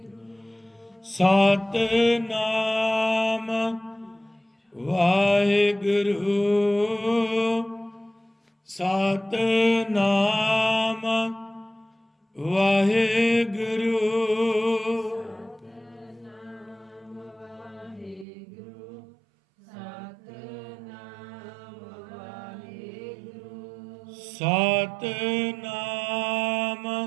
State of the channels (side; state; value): left; drops out; at 18.2 s